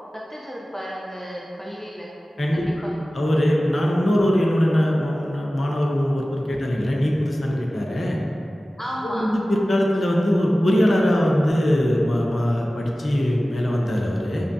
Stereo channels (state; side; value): normal; both; correlation 0.96